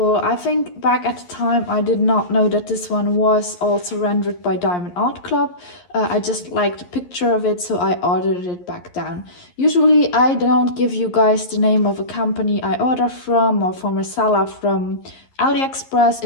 I think back at the time I did not know that this one was also rendered by Diamond Art Club. I just liked the picture of it, so I ordered it back then. Usually I don't give you guys the name of a company I order from or from a seller from Aliexpress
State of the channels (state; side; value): late; right; 11 ms